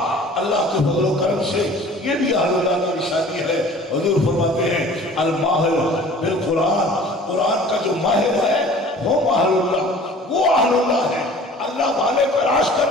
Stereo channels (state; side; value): normal; both; correlation 0.47